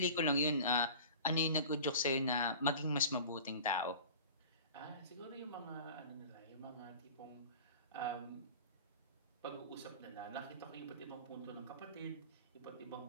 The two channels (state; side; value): inverted; both; correlation -0.39